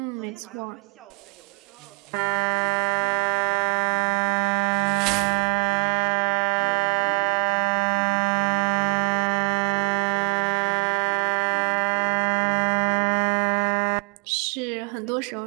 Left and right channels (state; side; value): quieter; left; 31.5 dB